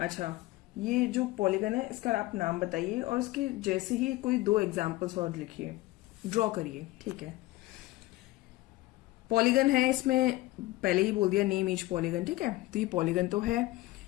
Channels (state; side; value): quieter; right; 18.6 dB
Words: ये जो पॉलीगन है इसका आप नाम बताइए और इसके जैसे ही कोई 2 एग्जाम्पल्स और लिखिए, ड्रॉ करिए, ठीक है। पॉलीगन है, इसमें पहले ही बोल दिया नेम ईच पॉलीगन, ठीक है। तो ये पॉलीगन तो है,